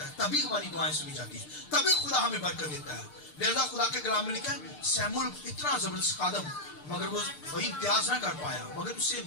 है, तभी हमारी दुआएं सुनी जाती है, तभी खुदा हमें बरकत देता है। लिहाजा खुदा के कलाम में लिखा है सैमुअल इतना जबरदस्त खादम, मगर वो वही इम्तियाज ना कर पाया, मगर उससे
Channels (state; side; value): late; right; 6.7 ms